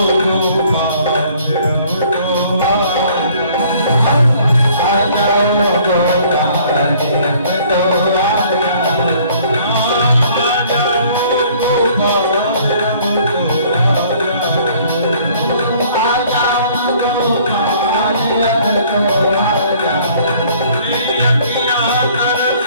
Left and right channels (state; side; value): inverted; both; correlation -0.57